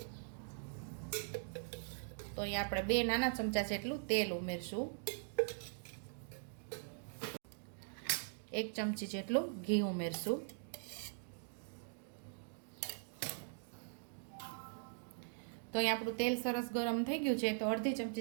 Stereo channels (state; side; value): silent; left; digital silence